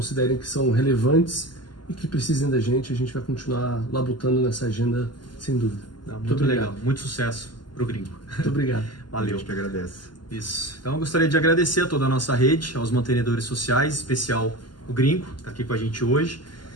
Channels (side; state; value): right; late; 0.71 ms